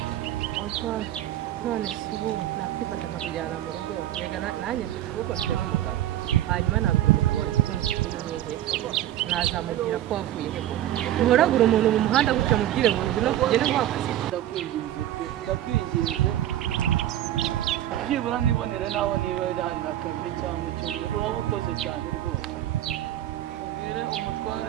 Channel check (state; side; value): quieter; left; 12.7 dB